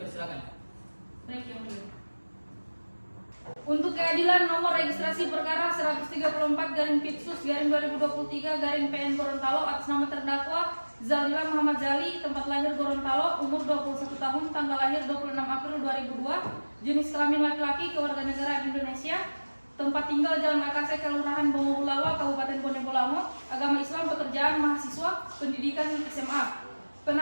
Baik yang mulia. Untuk keadilan nomor registrasi perkara 134/Pipsus/2023/PN Gorontalo atas nama terdakwa Zaldila Muhammad Jali, tempat lahir Gorontalo, umur 21 tahun, tanggal lahir 26 April 2002, jenis kelamin laki-laki, kewarganegaraan Indonesia, tempat tinggal Jalan Akase, Kelurahan Bongowulawa, Kabupaten Bone Bolango, agama Islam, pekerjaan mahasiswa, pendidikan SMA.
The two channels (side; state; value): both; inverted; correlation -1.00